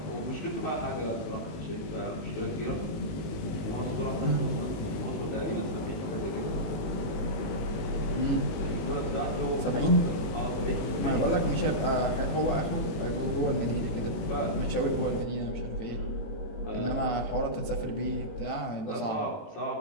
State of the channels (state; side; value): late; right; 19 ms